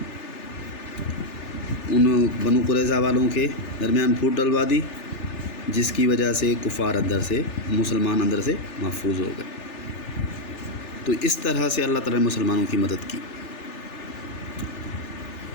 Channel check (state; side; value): late; right; 3.4 ms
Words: ان بنو قریظہ والوں کے درمیان پھوٹ ڈلوا دی، جس کی وجہ سے کفار اندر سے، مسلمان اندر سے محفوظ ہو گئے۔ تو اس طرح سے اللہ تعالیٰ نے مسلمانوں کی مدد کی۔